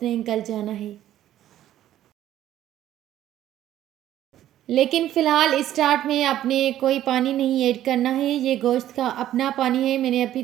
ने गल जाना है। लेकिन फ़िलहाल स्टार्ट में आपने कोई पानी नहीं ऐड करना है, ये गोश्त का अपना पानी है। मैंने अभी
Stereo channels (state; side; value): quieter; left; 12.5 dB